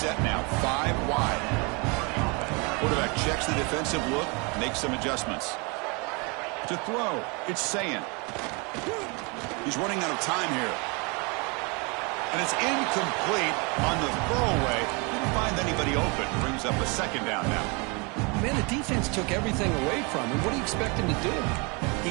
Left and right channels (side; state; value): left; quieter; 30.7 dB